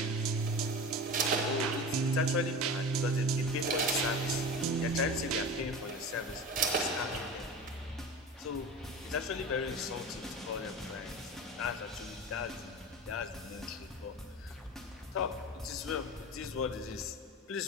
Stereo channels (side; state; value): both; normal; correlation 0.31